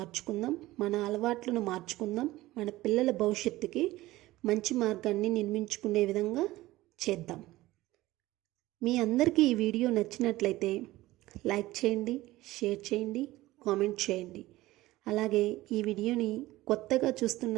మన అలవాట్లను మార్చుకుందాం, మన పిల్లల భవిష్యత్తుకి మంచి మార్గాన్ని నిర్మించుకునే విధంగా చేద్దాం. మీ అందరికీ ఈ వీడియో నచ్చినట్లయితే లైక్ చేయండి, షేర్ చేయండి, కామెంట్ చేయండి. అలాగే ఈ వీడియోని కొత్తగా చూస్తున్న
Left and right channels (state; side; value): quieter; left; 17.5 dB